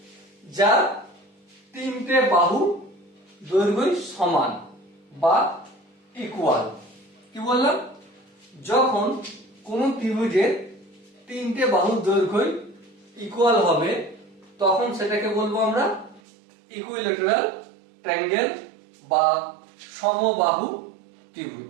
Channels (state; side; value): drops out; left; at 16.2 s